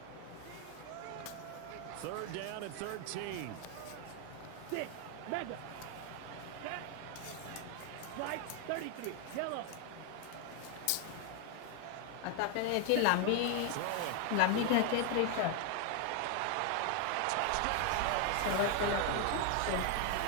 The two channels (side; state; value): both; different; correlation 0.00